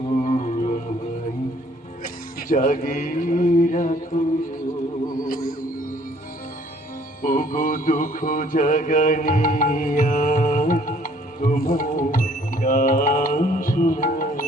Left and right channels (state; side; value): normal; both; correlation 0.60